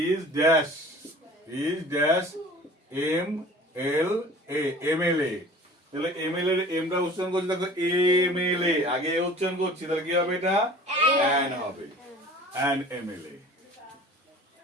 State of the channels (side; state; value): both; normal; correlation 0.45